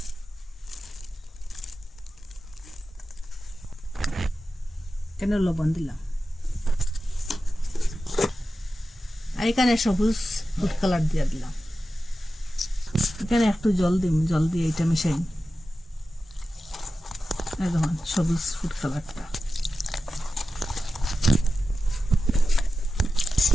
কেন লবণ দিলাম, আর এখানে সবুজ ফুড কালার দিয়ে দিলাম। এখানে একটু জল দিন, জল দিয়ে এটা মিশাই। দেখুন সবুজ ফুড কালারটা,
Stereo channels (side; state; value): both; normal; correlation 0.93